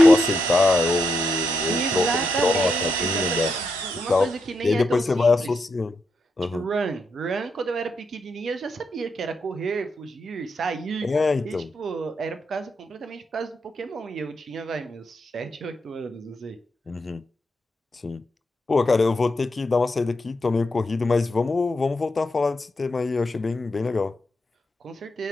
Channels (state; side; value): normal; both; correlation 0.83